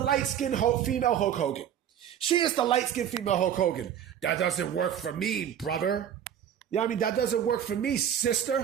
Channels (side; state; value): left; quieter; 9.5 dB